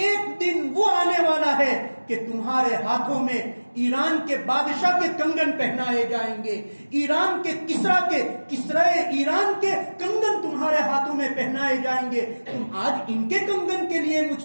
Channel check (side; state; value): both; inverted; correlation -1.00